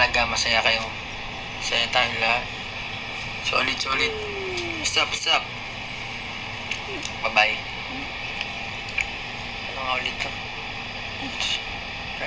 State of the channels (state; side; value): identical; both; correlation 1.00